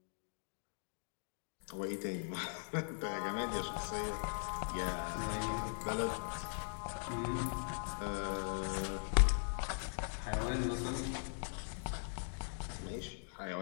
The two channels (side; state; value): right; silent; digital silence